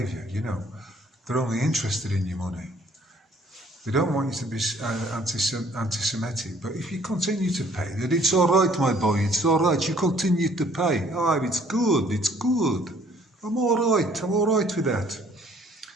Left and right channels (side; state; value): both; normal; correlation 0.59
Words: you know. They're only interested in your money. They don't want you to be anti-Semitic. But if you continue to pay, then it's all right, my boy, it's all right. You continue to pay. Oh, it's good, it's good. I'm all right with that.